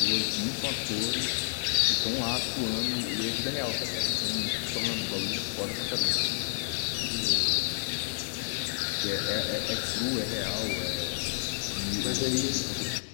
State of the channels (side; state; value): right; silent; digital silence